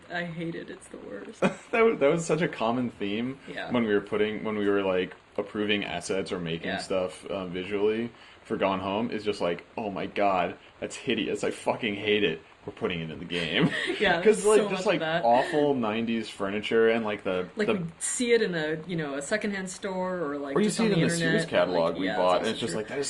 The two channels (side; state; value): both; identical; correlation 1.00